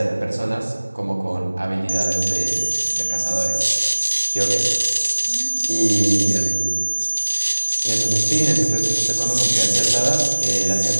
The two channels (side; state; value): both; inverted; correlation -1.00